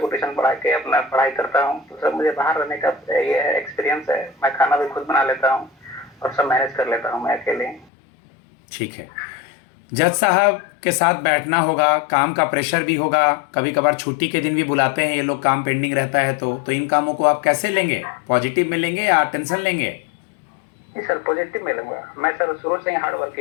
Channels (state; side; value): drops out; right; at 7.9 s